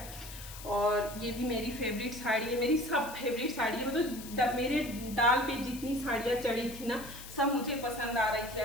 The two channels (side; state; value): left; noise; hiss, 13 dB below the sound